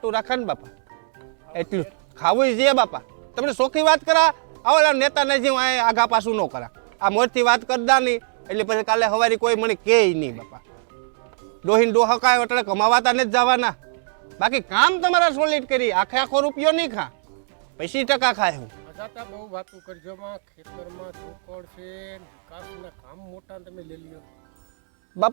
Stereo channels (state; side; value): silent; left; digital silence